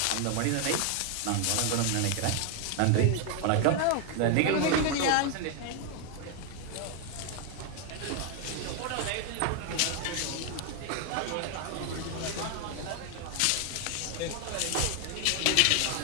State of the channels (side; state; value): both; different; correlation 0.01